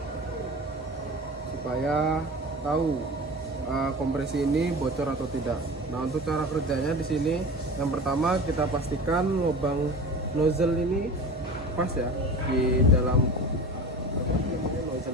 supaya tahu kompresi ini bocor atau tidak. Nah, untuk cara kerjanya di sini, yang pertama kita pastikan lubang nozzle ini pas ya di dalam nozzle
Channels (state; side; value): normal; both; correlation 0.34